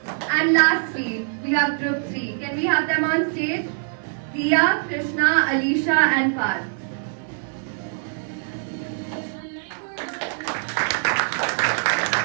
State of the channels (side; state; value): left; silent; digital silence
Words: And lastly, we have group 3. Can we have them on stage? Diya, Krishna, Alisha and Parth.